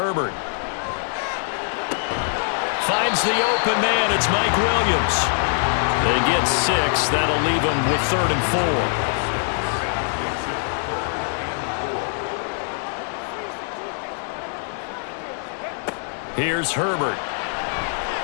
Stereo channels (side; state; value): right; silent; 63 dB below the other